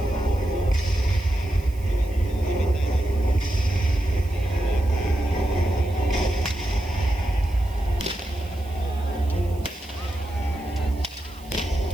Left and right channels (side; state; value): right; noise; hiss, 24 dB below the sound